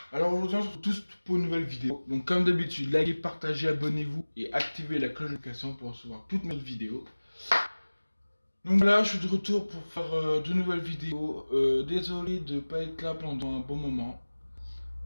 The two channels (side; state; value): both; inverted; correlation -1.00